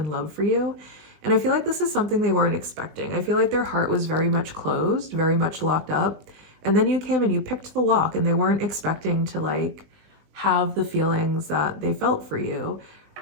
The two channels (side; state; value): left; late; 20 ms